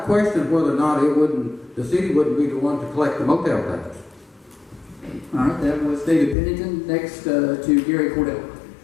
question whether or not the city wouldn't be the one to collect the motel tax. All right, that was David Pennington. Next to Gary Cordell.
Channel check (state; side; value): drops out; right; at 6.4 s